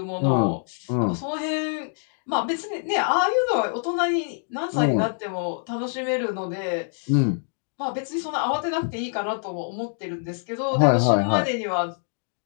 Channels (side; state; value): right; silent; 62 dB below the other